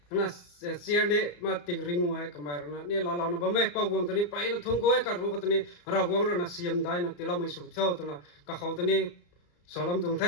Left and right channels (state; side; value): late; right; 34 ms